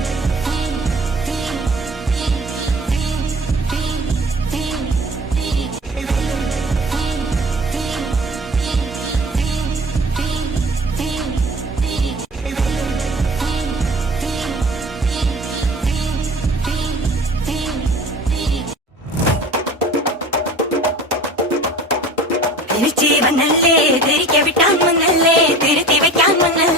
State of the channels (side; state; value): both; normal; correlation 0.42